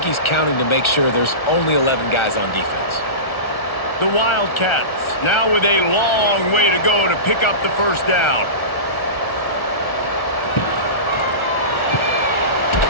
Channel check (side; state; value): right; late; 1.4 ms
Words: he's counting to make sure there's only 11 guys on defense. The Wildcats now with a long way to go to pick up the first down.